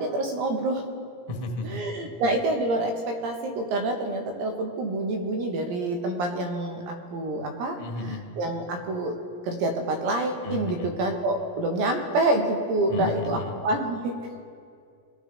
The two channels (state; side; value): late; left; 17 ms